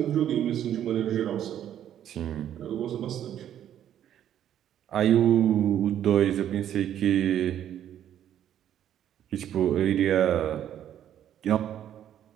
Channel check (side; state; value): left; quieter; 10.6 dB